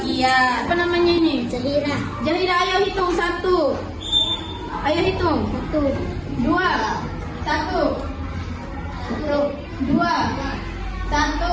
Apa namanya ini? Zahira. Zahira, ayo hitung 1. Ayo hitung. 1, 2, 1, 2, 1,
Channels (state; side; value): identical; both; correlation 1.00